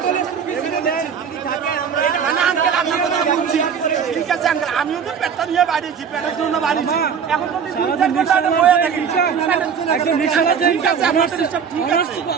ঠিক আছে আঙ্কেল, আমিও তো পেটটা নিয়ে বাড়িয়েছি, পেটের জন্য বাড়িয়েছি। এখন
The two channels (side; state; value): left; quieter; 7.1 dB